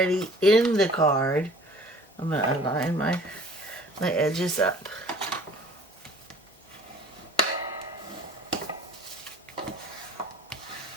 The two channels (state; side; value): normal; both; correlation 0.50